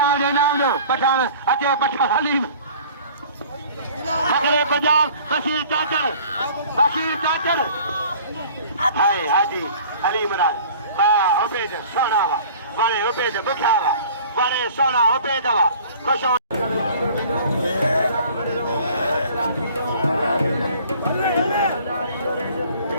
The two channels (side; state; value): both; inverted; correlation -0.48